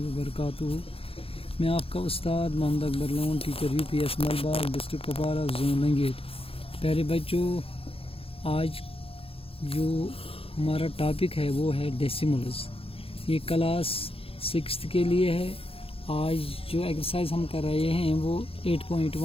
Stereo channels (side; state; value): right; late; 0.27 ms